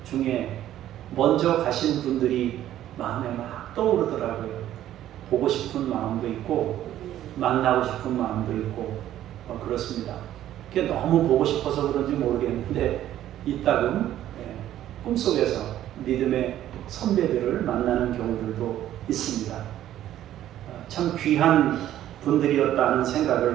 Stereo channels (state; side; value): quieter; left; 12.4 dB